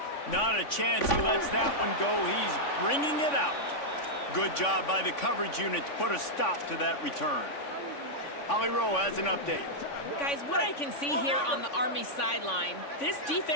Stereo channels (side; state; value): right; late; 3.5 ms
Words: Not a chance he lets that one go. He's bringing it out. Good job by the coverage unit to put a stop to that return. Holly Rowe has an update. Guys, what I can see here on the Army sideline, this